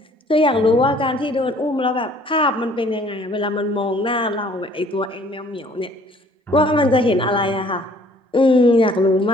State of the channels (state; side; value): normal; both; correlation 0.57